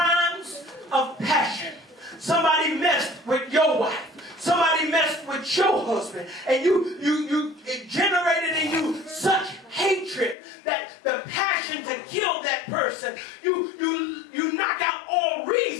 of passion. husband, and it generated in you such hatred that the passion to kill that person, you knock out all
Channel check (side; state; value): right; drops out; at 10.4 s